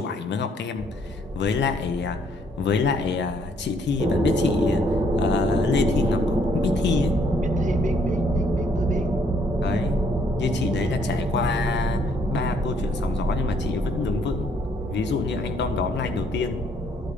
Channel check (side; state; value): both; normal; correlation 0.67